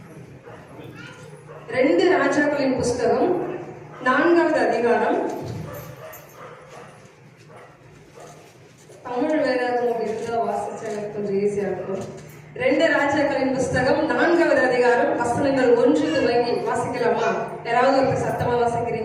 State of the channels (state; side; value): identical; both; correlation 1.00